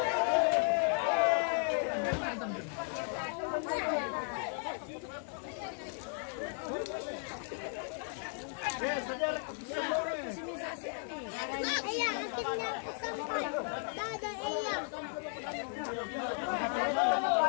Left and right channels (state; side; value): silent; right; 54 dB below the other